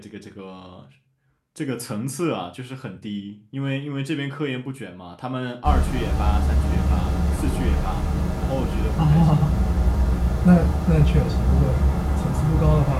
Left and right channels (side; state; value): both; identical; correlation 1.00